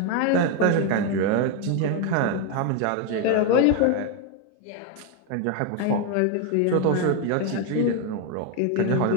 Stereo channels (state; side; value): different; both; correlation 0.01